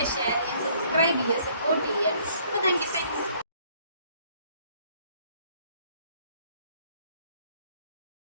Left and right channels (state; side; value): inverted; both; correlation -0.62